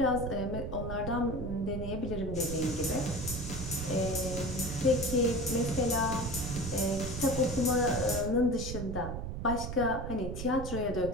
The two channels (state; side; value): noise; right; rumble, 6 dB below the sound